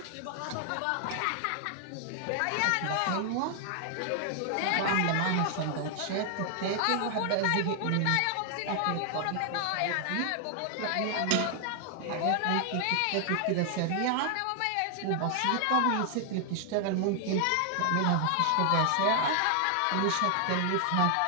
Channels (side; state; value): both; different; correlation 0.00